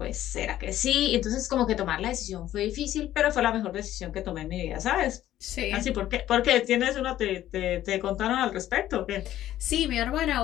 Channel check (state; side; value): quieter; right; 13.0 dB